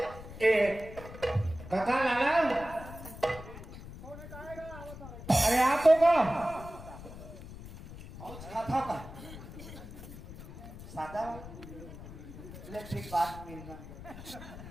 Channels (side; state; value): left; noise; rumble, 13 dB below the sound